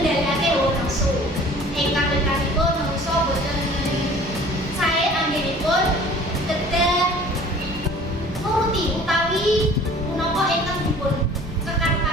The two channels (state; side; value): normal; both; correlation 0.48